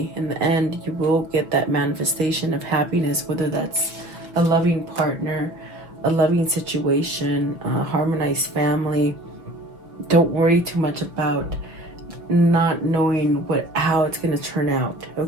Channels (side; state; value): left; late; 5.7 ms